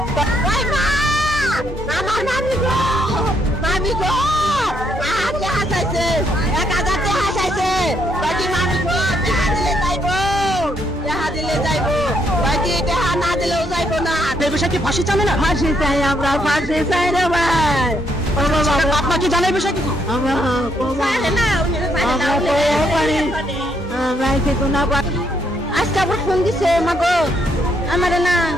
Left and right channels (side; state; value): both; normal; correlation 0.74